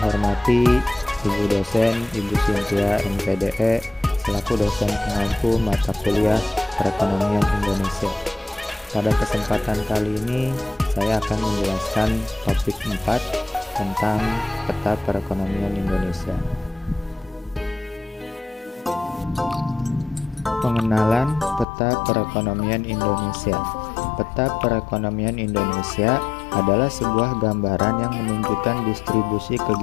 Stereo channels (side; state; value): right; drops out; at 21.7 s